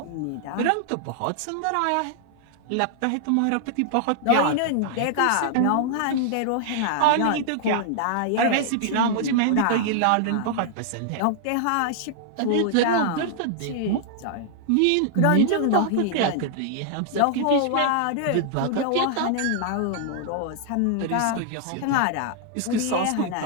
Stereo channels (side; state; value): both; different; correlation 0.00